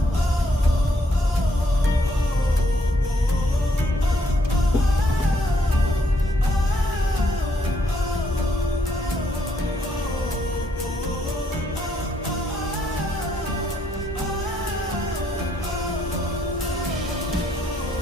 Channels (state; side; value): normal; both; correlation 0.72